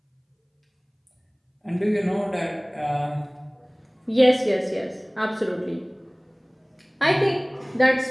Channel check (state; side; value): identical; both; correlation 1.00